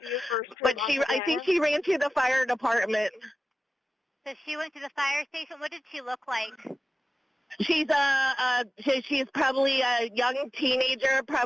But I think she ran to the fire department. So she went to the fire station. What did she look like? She's she's probably a young teenager,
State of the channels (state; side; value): normal; both; correlation 0.95